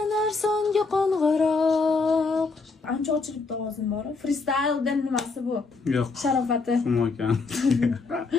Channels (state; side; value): quieter; right; 4.1 dB